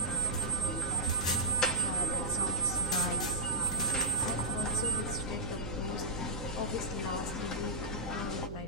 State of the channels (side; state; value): right; noise; hum, 9 dB below the sound